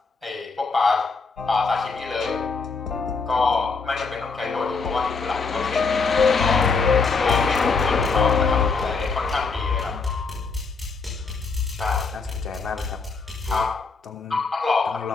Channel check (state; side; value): quieter; right; 4.6 dB